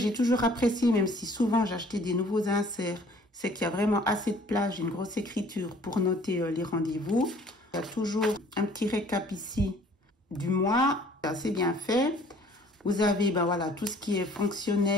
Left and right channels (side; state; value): both; normal; correlation 0.55